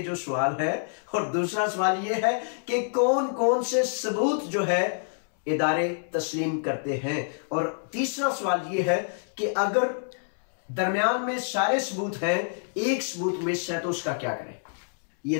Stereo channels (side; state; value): right; silent; 60 dB below the other